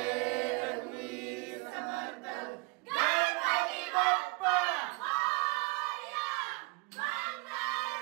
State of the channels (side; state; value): left; quieter; 27.2 dB